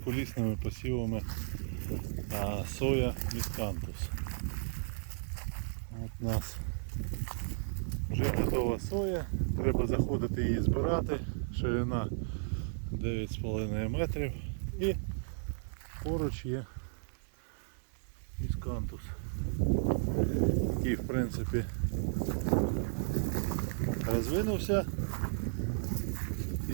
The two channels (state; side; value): silent; left; digital silence